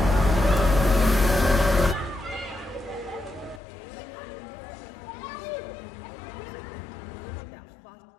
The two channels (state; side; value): drops out; right; at 3.6 s